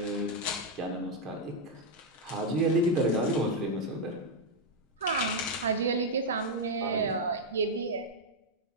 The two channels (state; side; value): normal; both; correlation 0.00